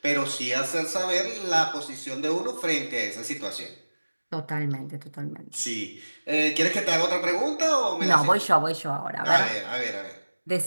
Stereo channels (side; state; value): both; inverted; correlation -1.00